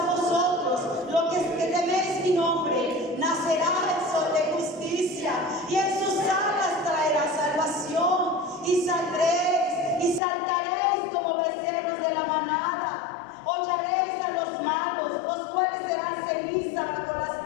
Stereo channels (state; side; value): drops out; right; at 10.2 s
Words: vosotros, los que teméis mi nombre, nacerá el sol de justicia, y en sus alas traerá salvación, y saldréis y saltaréis como becerros de la manada. Hollaréis a los malos, los cuales serán ceniza bajo las